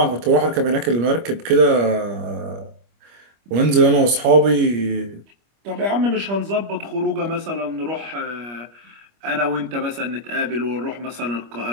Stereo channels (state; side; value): late; left; 25 ms